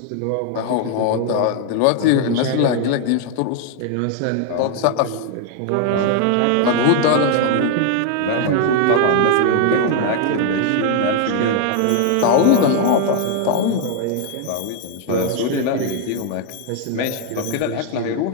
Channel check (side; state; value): both; different; correlation 0.00